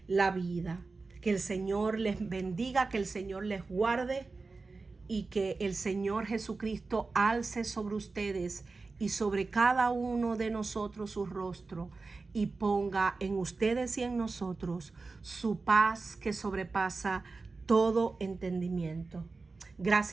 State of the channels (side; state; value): left; quieter; 3.9 dB